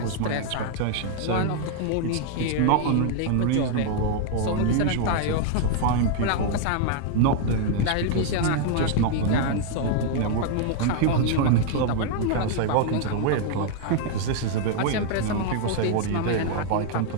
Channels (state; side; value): different; both; correlation 0.00